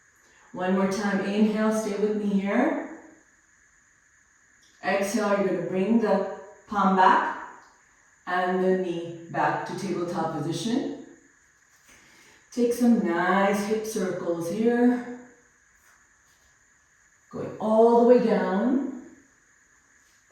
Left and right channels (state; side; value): identical; both; correlation 1.00